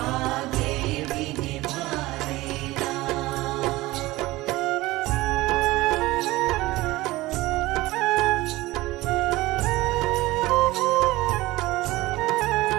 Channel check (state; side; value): quieter; left; 19.1 dB